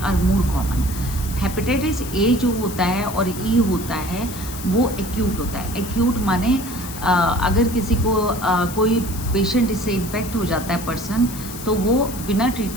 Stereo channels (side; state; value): left; noise; hiss, 12 dB below the sound